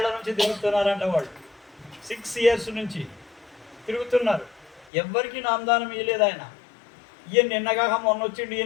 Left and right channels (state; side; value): drops out; right; at 4.9 s